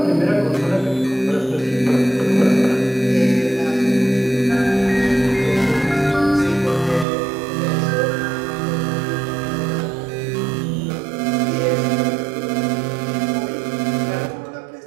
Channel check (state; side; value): drops out; left; at 7.1 s